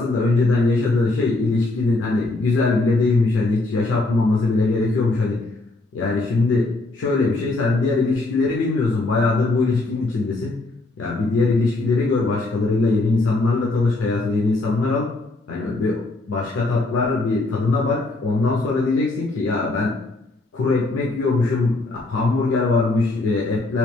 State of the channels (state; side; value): quieter; right; 3.1 dB